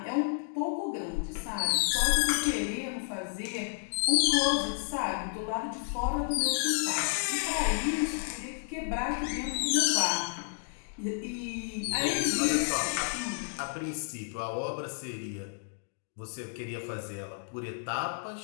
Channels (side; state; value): right; silent; digital silence